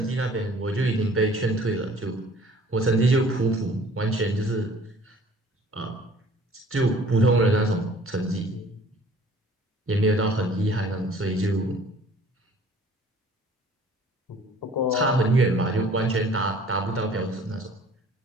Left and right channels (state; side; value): normal; both; correlation 0.52